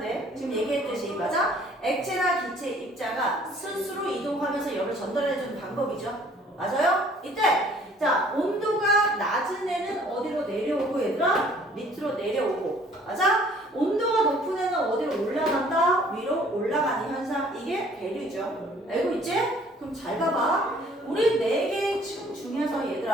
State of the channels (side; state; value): both; normal; correlation 0.57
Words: 지금 얘기했듯이 맞아? 액체나 기체 입자가 스스로 이동하면서 열을 전달해주는 방법이죠. 맞아요? 이때 자 온도가 낮은 애는 어디로 내려오고 얘들아? 밑으로 내려오고 맞아? 온도가 높은 애는 어디로 올라간다? 위로 올라가는 현상 이게 대류죠. 알고 있지? 그럼 잘 봐봐. 우리 4개의 층 중에서